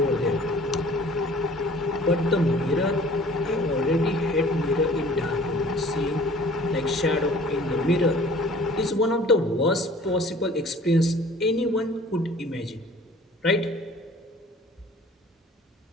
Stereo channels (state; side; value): normal; both; correlation 0.50